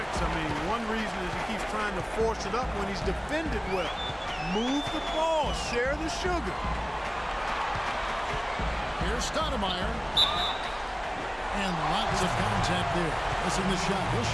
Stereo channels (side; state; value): both; identical; correlation 1.00